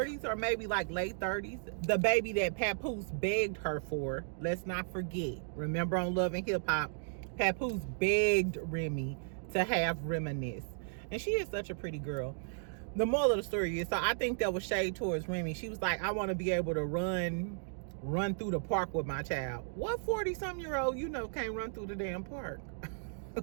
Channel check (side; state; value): left; silent; digital silence